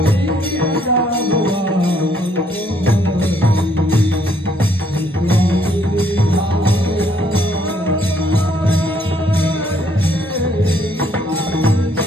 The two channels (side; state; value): both; normal; correlation 0.67